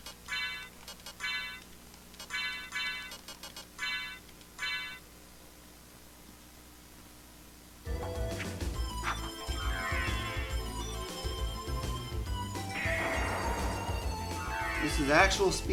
This is actual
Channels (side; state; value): both; identical; correlation 1.00